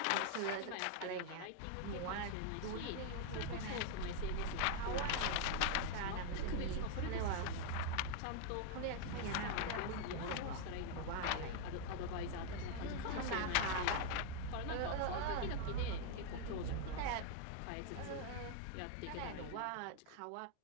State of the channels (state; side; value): different; both; correlation 0.00